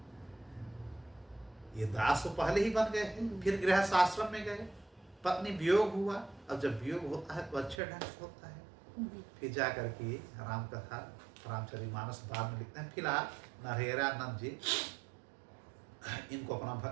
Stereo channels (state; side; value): drops out; left; at 7.8 s